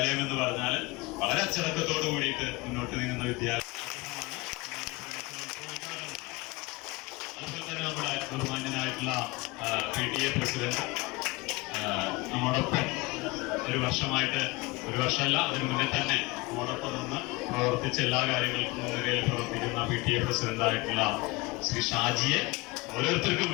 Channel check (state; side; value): quieter; right; 24.1 dB